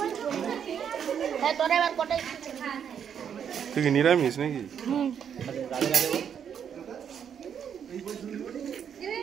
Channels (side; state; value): left; quieter; 8.1 dB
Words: তুই কি নিরামিষ নাকি